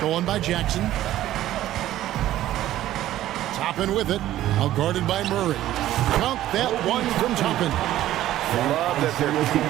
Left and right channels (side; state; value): left; quieter; 13.7 dB